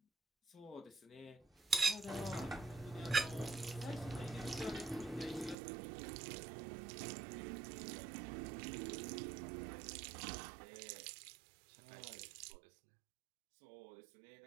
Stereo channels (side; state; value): left; drops out; at 5.6 s